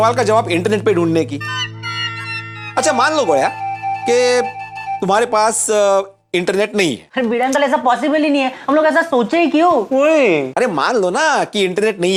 का जवाब इंटरनेट पे ढूंढने की। अच्छा मान लो गोया कि तुम्हारे पास इंटरनेट नहीं है। अरे भिड़े अंकल, ऐसा पॉसिबल ही नहीं है, हम लोग ऐसा सोचे ही क्यों? अरे मान लो ना कि इंटरनेट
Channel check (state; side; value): identical; both; correlation 1.00